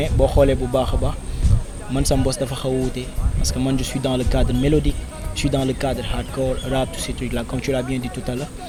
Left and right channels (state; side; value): identical; both; correlation 1.00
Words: boo xoolee bu baax a baax man sama boss dafa xaw a wuute parce que man je suis dans le cadre mélodique je suis dans le cadre hardcore rap tous ces trucs là comme tu l'as bien dit tout à l'heure